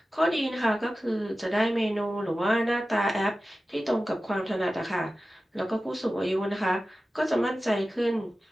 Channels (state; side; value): normal; both; correlation 0.95